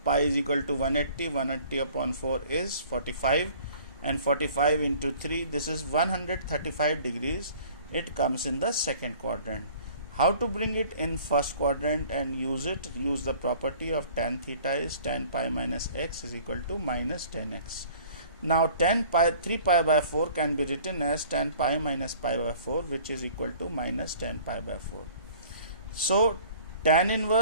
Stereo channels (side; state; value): both; inverted; correlation -0.51